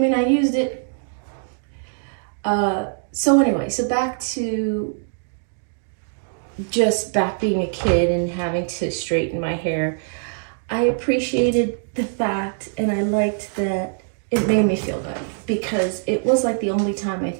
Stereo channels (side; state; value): left; silent; digital silence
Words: mean I used it. So anyway, so back being a kid and having to straighten my hair. I appreciated the fact, and I liked that it made me feel good, because it was like the only time I